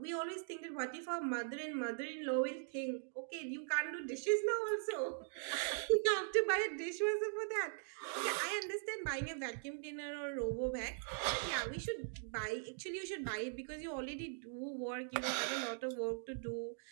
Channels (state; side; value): silent; left; digital silence